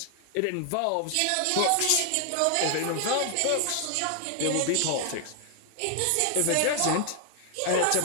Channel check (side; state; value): both; different; correlation 0.00